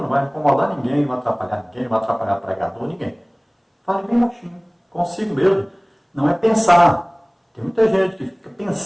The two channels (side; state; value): both; identical; correlation 1.00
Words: não vai incomodar ninguém, não vai atrapalhar ninguém, não vai atrapalhar pregador, ninguém. Fale bem baixinho, consigo mesmo. Não é pensar. Tem muita gente que fica